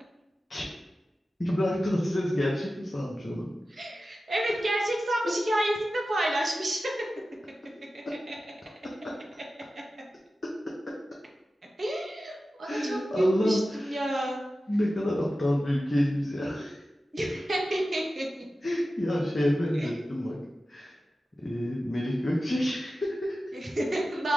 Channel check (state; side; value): normal; both; correlation 0.94